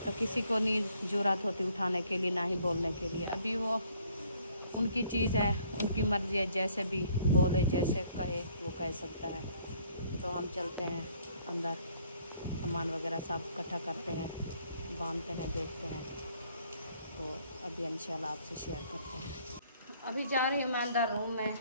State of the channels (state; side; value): inverted; both; correlation -0.63